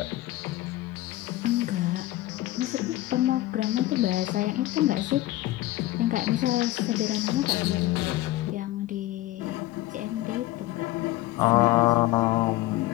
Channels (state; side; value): quieter; right; 16.6 dB